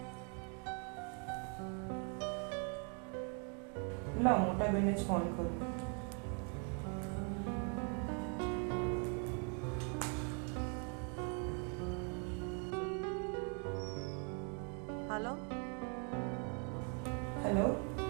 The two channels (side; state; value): left; quieter; 39.4 dB